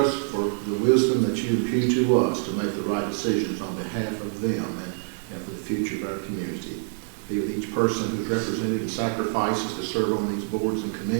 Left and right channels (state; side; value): silent; left; digital silence